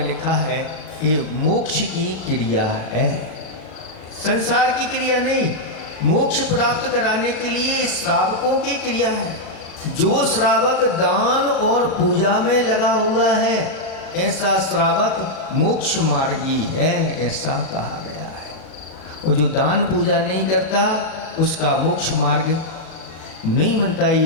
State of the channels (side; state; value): right; late; 37 ms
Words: लिखा है ये मोक्ष की क्रिया है, संसार की क्रिया नहीं। मोक्ष प्राप्त कराने के लिए श्रावकों की क्रिया है। जो श्रावक दान और पूजा में लगा हुआ है ऐसा श्रावक मोक्ष मार्गी है, ऐसा कहा गया है। और जो दान पूजा नहीं करता उसका मोक्ष मार्ग नहीं बनता।